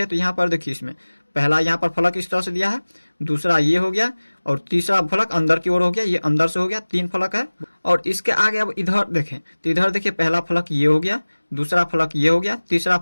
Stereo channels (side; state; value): both; inverted; correlation -1.00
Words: तो यहाँ पर देखिए इसमें पहला यहाँ पर फलक इस तरह से दिया है, दूसरा ये हो गया, और तीसरा फलक अंदर की ओर हो गया, ये अंदर से हो गया, 3 फलक है। और इसके आगे अब इधर देखें तो इधर देखिए पहला फलक ये हो गया, दूसरा फलक ये हो गया, तीसरा